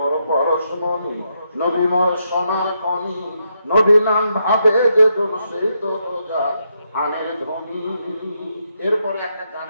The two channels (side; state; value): both; inverted; correlation -0.80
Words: পরশমণি, নবী মোর সোনার খনি, নবী নাম ভাবে যে সেই তো রোজা আনের ধ্বনি। এরপরে একটা